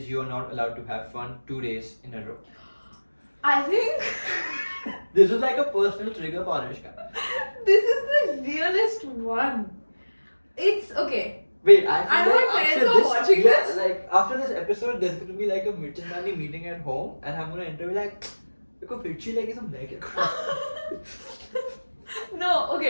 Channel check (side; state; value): both; inverted; correlation -1.00